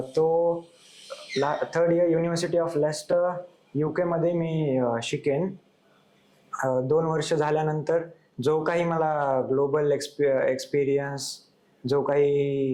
तो third year university of Leicester UK मध्ये मी शिकेन. 2 वर्ष झाल्यानंतर जो काही मला ग्लोबल एक्सपिरियन्स, जो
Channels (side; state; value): both; identical; correlation 1.00